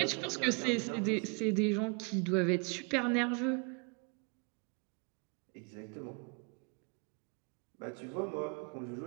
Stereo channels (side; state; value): left; quieter; 34.5 dB